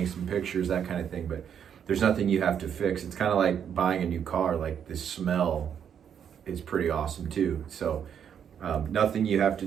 some pictures, that kind of thing. But there's nothing you have to fix. It's kind of like buying a new car. Like the smell is pretty awesome too. So nothing you have to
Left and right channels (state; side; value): quieter; left; 8.3 dB